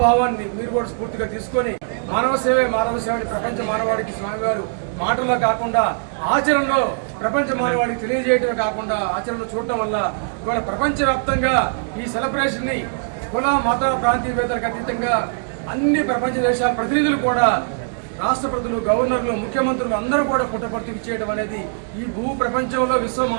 మీరు కూడా స్ఫూర్తిగా తీసుకొని మానవ సేవే మానవ సేవని ప్రపంచ మానవాడికి స్వామివారు మాటల్లో కాకుండా ఆచరణలో ప్రపంచ మానవాడికి తెలియజేయడమే కాకుండా ఆచరణలో చూడటం వల్ల ఇవాళ ప్రపంచవ్యాప్తంగా ఈ సెలబ్రేషన్ ని కుల మత ప్రాంతీయవేత్తలకు అతీతంగా అన్ని ప్రపంచ దేశాల ప్రతినిధులు కూడా, రాష్ట్రపతులు, గవర్నర్లు, ముఖ్యమంత్రులు అందరూ కూడా పుట్టపర్తికి చేయడం అనేది ఈ భూ ప్రపంచంలో విశ్వ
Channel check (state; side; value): silent; left; digital silence